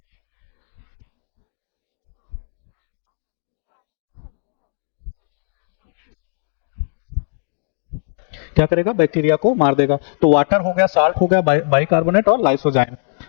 क्या करेगा, बैक्टीरिया को मार देगा। तो वाटर हो गया, साल्ट हो गया, बाइकार्बोनेट और लाइसोजाइम।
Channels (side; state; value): right; silent; digital silence